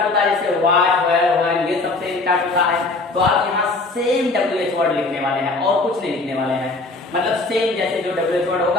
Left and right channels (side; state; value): right; quieter; 3.3 dB